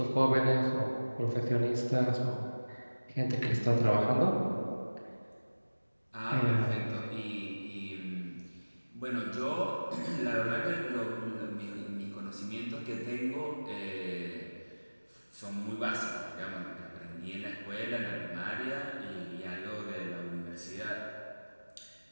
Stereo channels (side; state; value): both; inverted; correlation -1.00